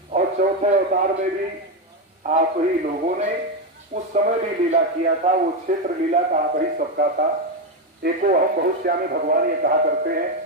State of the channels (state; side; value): normal; both; correlation 0.10